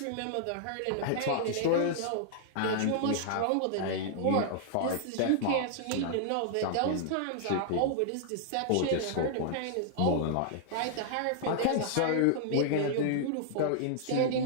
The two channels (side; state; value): both; different; correlation -0.01